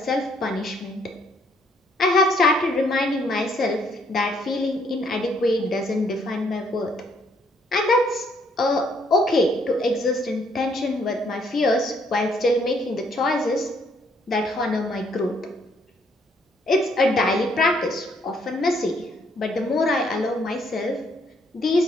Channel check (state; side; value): normal; both; correlation 0.68